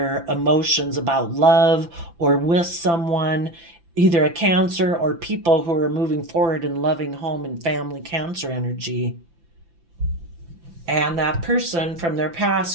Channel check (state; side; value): late; left; 5.9 ms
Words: emotions about love or with someone, either a Cancer or people who are moving forward in loving home and family Cancer energy. And that person from their